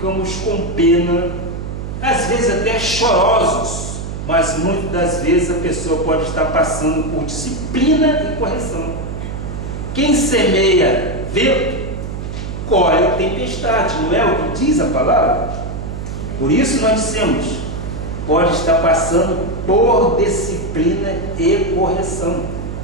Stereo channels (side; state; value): right; noise; hum, 6 dB below the sound